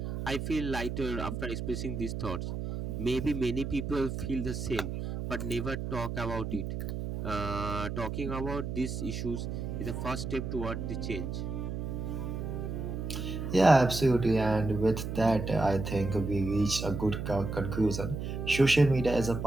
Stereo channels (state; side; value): noise; right; hum, 4 dB below the sound